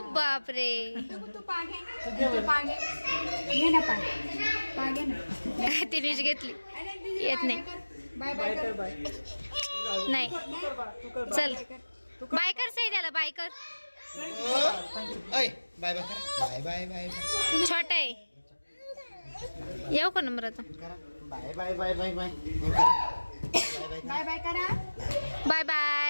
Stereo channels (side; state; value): both; inverted; correlation -1.00